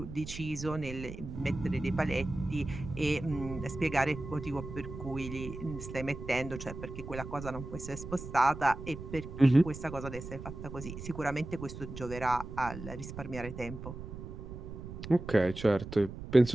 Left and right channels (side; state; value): right; noise; rumble, 10 dB below the sound